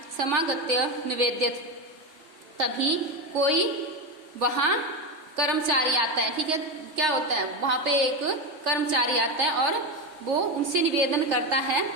समागत्य निवेद्यत। तभी कोई वहां कर्मचारी आता है, ठीक है, क्या होता है, वहां पे एक कर्मचारी आता है और वो उनसे निवेदन करता है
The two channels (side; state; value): left; late; 3.2 ms